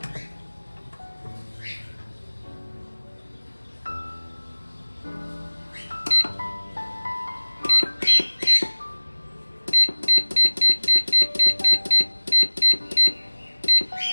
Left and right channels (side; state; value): both; inverted; correlation -1.00